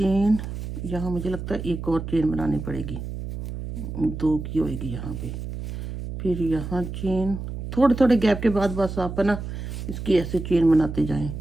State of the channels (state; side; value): noise; right; hum, 7 dB below the sound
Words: यहाँ मुझे लगता है एक और चेन बनानी पड़ेगी, 2 की होएगी यहाँ पे। फिर यहाँ चेन, थोड़े थोड़े गैप के बाद बस आप है ना इसकी ऐसे चेन बनाते जाएं।